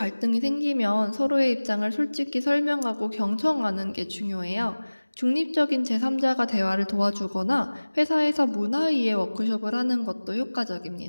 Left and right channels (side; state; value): both; inverted; correlation -1.00